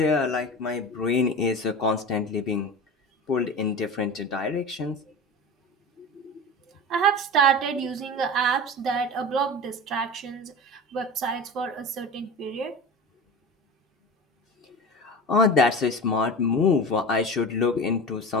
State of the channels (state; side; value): normal; both; correlation 0.31